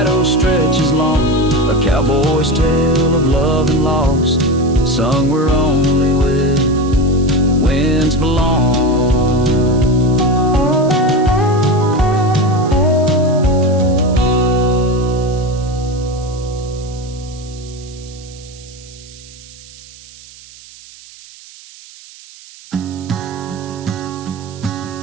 stretches long, a cowboy's tale of love and loss, sung where only winds belong.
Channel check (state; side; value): noise; right; hiss, 21 dB below the sound